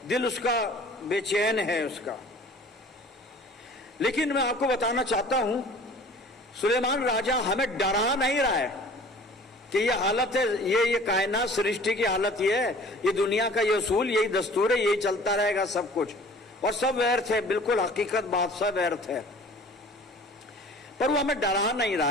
दिल उसका बेचैन है उसका। लेकिन मैं आपको बताना चाहता हूं, सुलेमान राजा हमें डरा नहीं रहा है कि ये हालत है, ये कायनात सृष्टि की हालत ये है, ये दुनिया का ये उसूल, यही दस्तूर है, यही चलता रहेगा सब कुछ, और सब व्यर्थ है, बिल्कुल हकीकत बात, सब व्यर्थ है। पर वो हमें डरा नहीं रहा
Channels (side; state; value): both; normal; correlation 0.47